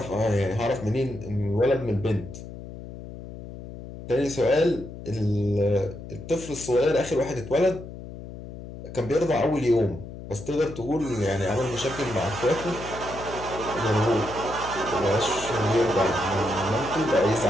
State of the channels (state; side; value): noise; left; hum, 12 dB below the sound